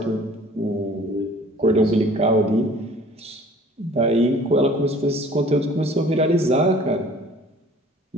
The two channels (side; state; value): both; normal; correlation 0.50